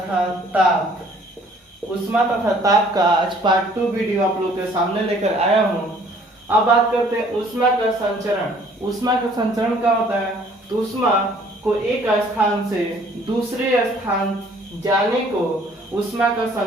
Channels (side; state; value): both; normal; correlation 0.58